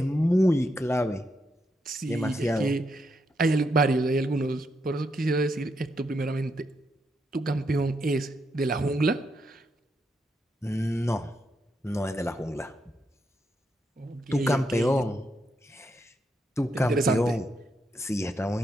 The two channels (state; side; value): normal; both; correlation 0.81